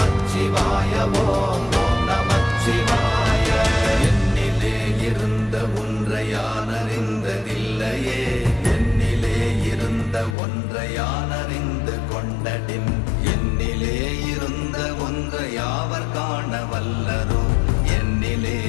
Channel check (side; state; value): right; drops out; at 10.4 s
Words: ஓம் ஓம் நமச்சிவாய. என்னிலே இருந்த ஒன்றை யான் அறிந்ததில்லையே, என்னிலே இருந்த ஒன்றை யான் அறிந்து கொண்டடின், என்னிலே இருந்த ஒன்றை யாவர் காண வல்லரோ, என்னிலே